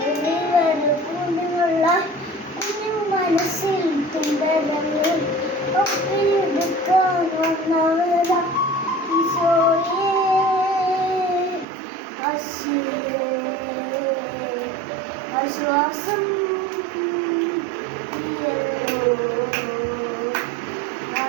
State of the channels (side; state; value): left; drops out; at 11.7 s